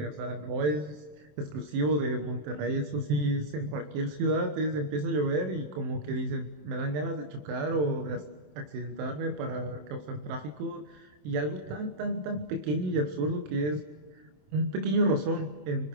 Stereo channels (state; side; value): late; left; 27 ms